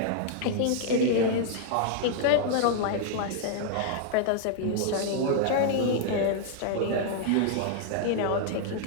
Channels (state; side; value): different; both; correlation -0.01